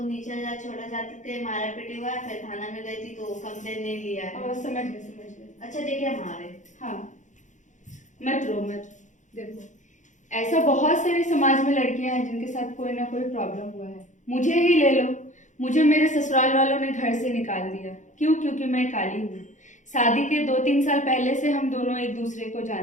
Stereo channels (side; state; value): right; late; 0.36 ms